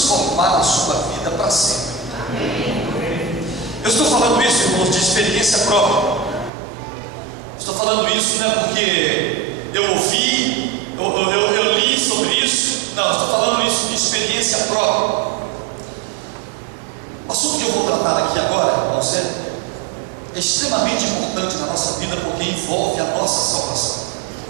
a sua vida para sempre. Eu estou falando isso, irmãos, de experiência própria. Estou falando isso não é porque eu ouvi, eu li sobre isso. Não, estou falando isso de experiência própria. O assunto que eu vou tratar aqui agora, irmãos, é extremamente importante na nossa vida porque envolve a nossa salvação.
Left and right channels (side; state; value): left; drops out; at 6.5 s